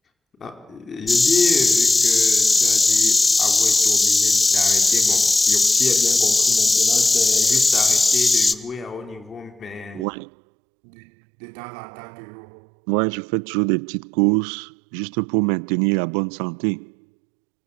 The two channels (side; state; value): left; drops out; at 10.1 s